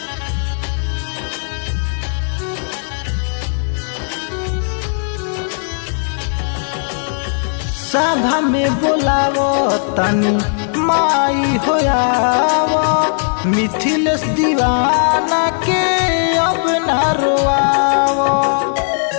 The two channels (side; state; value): right; silent; 64 dB below the other